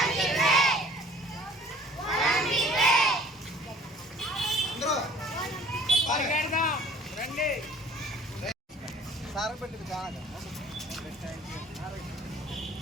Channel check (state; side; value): normal; both; correlation 0.51